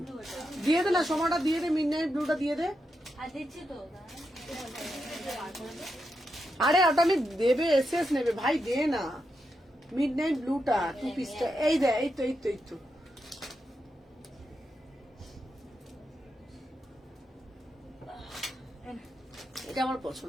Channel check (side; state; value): both; normal; correlation 0.85